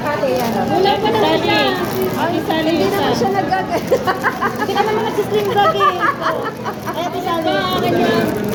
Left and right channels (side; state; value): both; identical; correlation 1.00